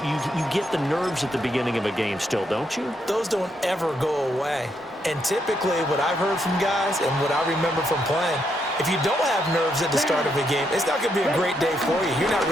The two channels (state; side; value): normal; both; correlation 0.78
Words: get the nerves at the beginning of a game still, don't you? Those don't ever go away. And typically what I've heard from guys and what I remember from playing, if you don't have nerves at the start of a game, it's not going to be a great day for you. You're not